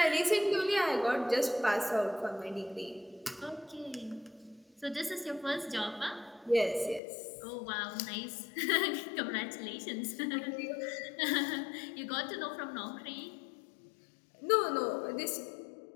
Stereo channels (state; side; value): drops out; right; at 7.0 s